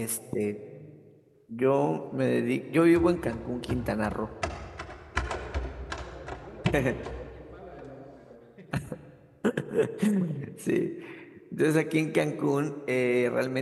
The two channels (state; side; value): identical; both; correlation 1.00